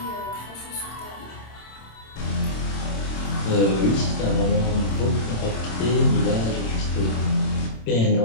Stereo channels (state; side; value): late; right; 27 ms